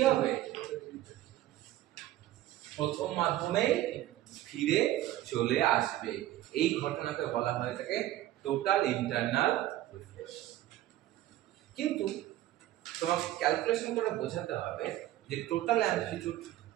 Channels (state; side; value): quieter; left; 14.4 dB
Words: হবে, প্রথম মাধ্যমে ফিরে চলে আসবে। এই ঘটনাকে বলা হয় থাকে টোটাল ইন্টারনাল রিফ্লেকশন। কিন্তু তোমাকে ক্যালকুলেশন করে বোঝাতে হবে যে টোটাল অ্যামপ্লিটিউড